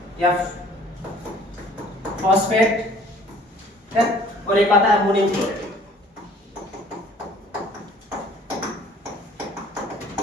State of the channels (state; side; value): normal; both; correlation 0.54